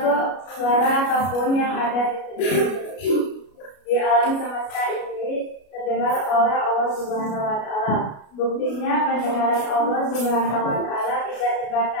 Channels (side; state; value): right; late; 33 ms